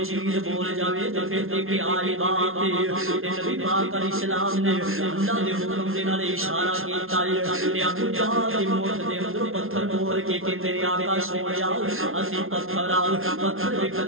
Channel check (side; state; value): left; late; 0.61 ms